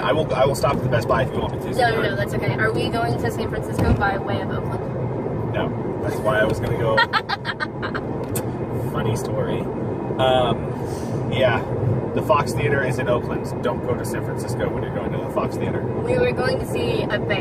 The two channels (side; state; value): both; identical; correlation 1.00